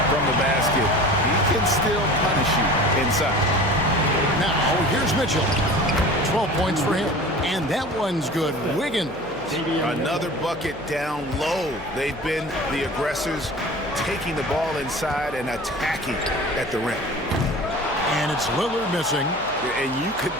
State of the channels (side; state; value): left; noise; hum, 20 dB below the sound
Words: from the basket, he can still punish you inside. Now, here's Mitchell. 12 points for him. And that one's good. Wiggins. Another bucket down low. They've been the aggressors, taking the ball inside and attacking at the rim. And it's Lillard missing. And you could